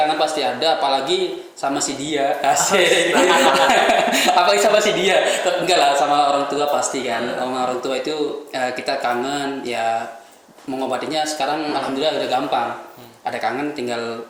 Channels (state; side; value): identical; both; correlation 1.00